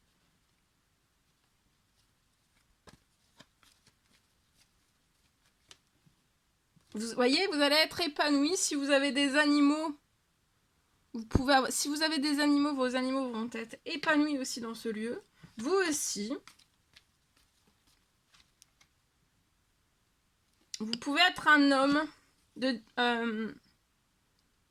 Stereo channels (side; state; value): both; identical; correlation 1.00